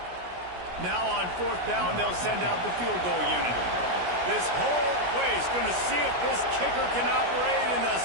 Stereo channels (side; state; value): left; late; 17 ms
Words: Now on 4th down, they'll send out the field goal unit. This whole place going to see if this kicker can operate in the